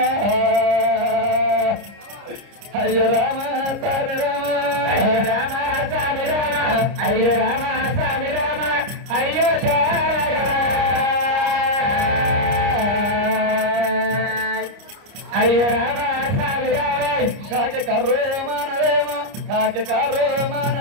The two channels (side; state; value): left; late; 30 ms